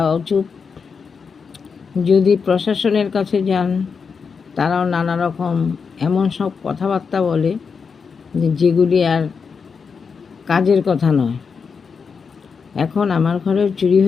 চুপ, যদি প্রশাসনের কাছে যান তারাও নানা রকম এমন সব কথাবার্তা বলে যেগুলি আর কাজের কথা নয়। এখন আমার ঘরেও চুরি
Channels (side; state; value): right; quieter; 5.6 dB